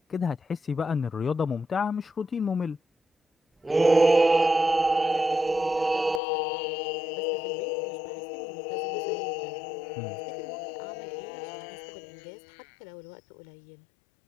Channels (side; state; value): right; drops out; at 6.2 s